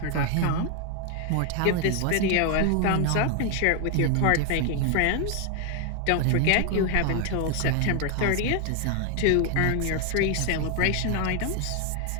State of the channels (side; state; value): both; different; correlation 0.00